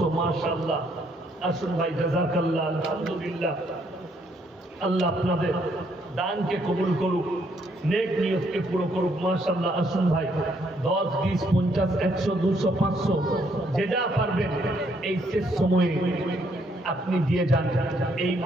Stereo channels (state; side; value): normal; both; correlation 0.70